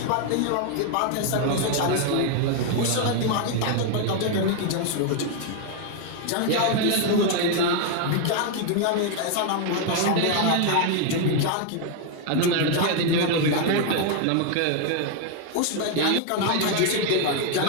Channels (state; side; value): different; both; correlation 0.01